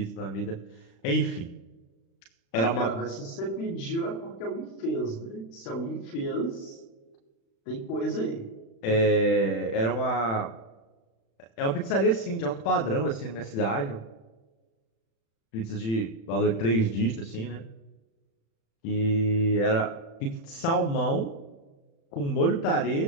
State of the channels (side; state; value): right; late; 36 ms